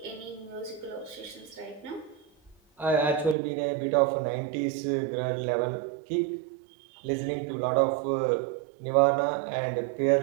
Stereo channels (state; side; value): drops out; left; at 3.4 s